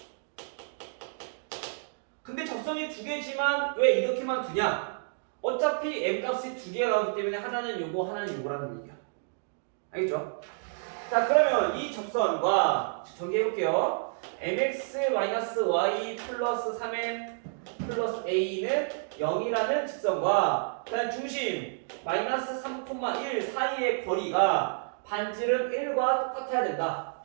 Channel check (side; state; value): left; silent; digital silence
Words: 근데 접선이 두 개지만 왜 이렇게만 두냐? 어차피 m 값이 두 개가 나오기 때문에 하나는 요거 하나는 요거라는 얘기야. 알겠죠? 자, 그러면 이 접선과 전개해볼게요. mx-y 플러스 3m 플러스 a는 0이라는 직선과 그다음 중심 마이너스 3,1 사이의 거리가 반지름 1과 똑같아야 된다.